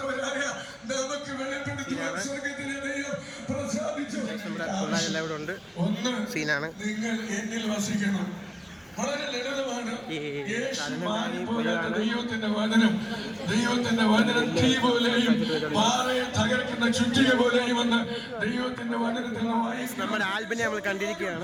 നമ്മുടെ പിള്ളേരെല്ലാം ഇവിടെ ഉണ്ട്. സീനാണ്. ദൈവത്തിന്റെ വചനം തീ പോലെയും പാറയെ തകർക്കുന്ന ചുറ്റിക പോലെയും വന്ന് ദൈവത്തിന്റെ വചനത്തിൽ നമ്മുടെ ആൽബിനെ നമ്മൾ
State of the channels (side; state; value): both; identical; correlation 1.00